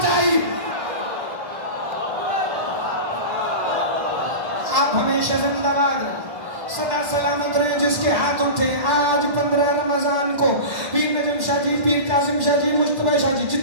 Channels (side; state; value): left; late; 1.1 ms